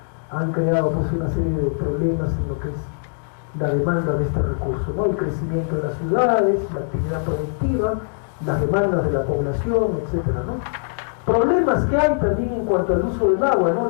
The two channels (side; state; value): right; silent; digital silence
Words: han creado pues una serie de problemas en lo que es la demanda de este recurso, ¿no? El crecimiento de las ciudades, la actividad productiva, las demandas de la población, etcétera, ¿no? Problemas que hay también en cuanto al uso del agua, ¿no?